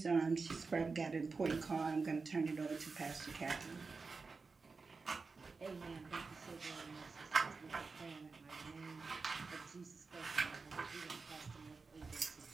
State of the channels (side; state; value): left; quieter; 4.4 dB